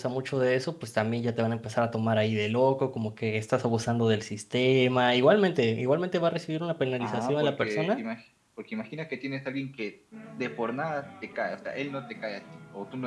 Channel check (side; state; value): both; identical; correlation 1.00